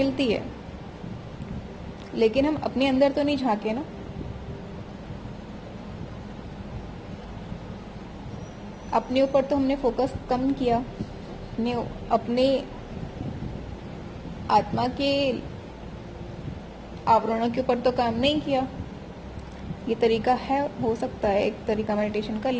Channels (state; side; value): identical; both; correlation 1.00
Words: है, लेकिन हम अपने अंदर तो नहीं झांके ना। अपने ऊपर तो हमने फोकस कम किया, अपने आत्मा के आवरणों के ऊपर तो काम नहीं किया। ये तरीका है, हो सकता है एक तरीका मेडिटेशन का,